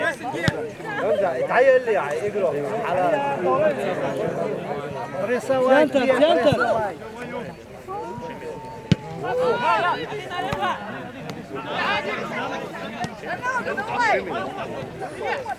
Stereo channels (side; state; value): both; identical; correlation 1.00